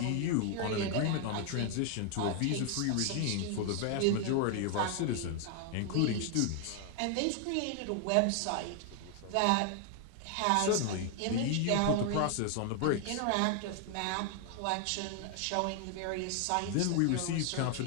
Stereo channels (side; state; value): both; different; correlation 0.00